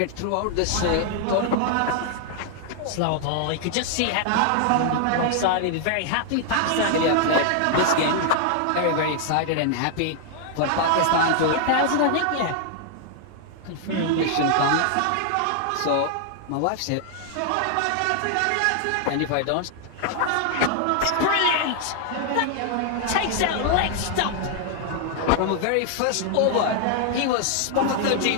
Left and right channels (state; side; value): different; both; correlation 0.00